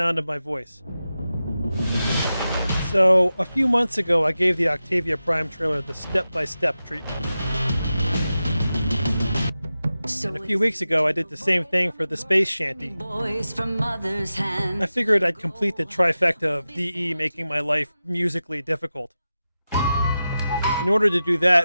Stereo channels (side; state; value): both; inverted; correlation -0.93